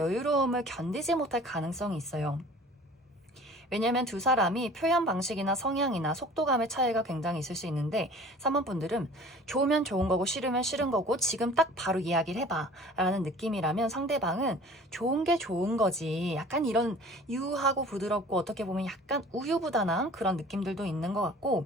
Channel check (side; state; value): both; normal; correlation 0.46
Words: 견디지 못할 가능성이 있어요. 왜냐면 두 사람이 표현 방식이나 성향이나 속도감의 차이가 굉장히 있을 수 있는데, 3번 분들은 좋으면 좋은 거고 싫으면 싫은 거고 지금 딱 바로 이야기를 해봐 라는 느낌이라면, 상대방은 좋은 게 좋은 거지, 약간 이런 유하고 부드럽고 어떻게 보면 약간 우유부단한 그런 느낌들도 있는 것